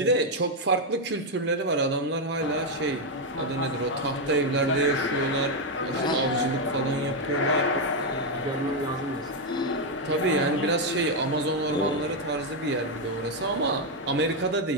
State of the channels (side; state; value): both; normal; correlation 0.03